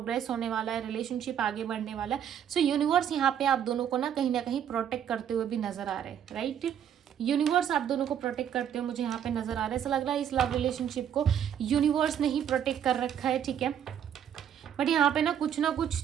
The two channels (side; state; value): left; quieter; 9.2 dB